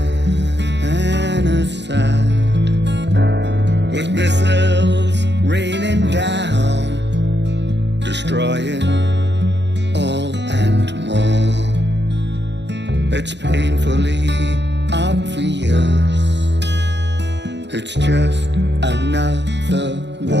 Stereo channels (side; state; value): left; late; 0.51 ms